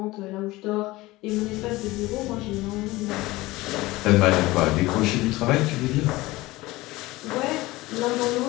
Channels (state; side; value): quieter; right; 19.7 dB